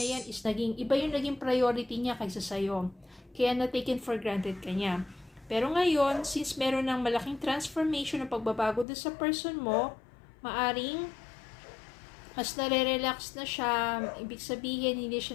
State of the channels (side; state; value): right; drops out; at 8.8 s